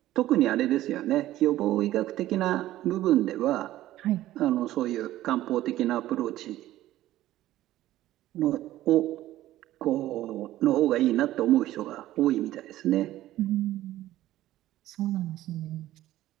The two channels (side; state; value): left; quieter; 14.7 dB